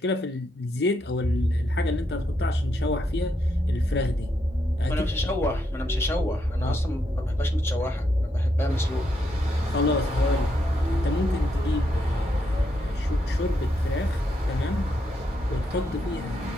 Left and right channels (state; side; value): normal; both; correlation 0.79